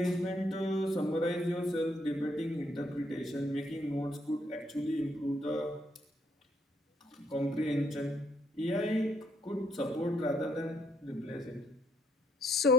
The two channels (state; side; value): normal; both; correlation 0.72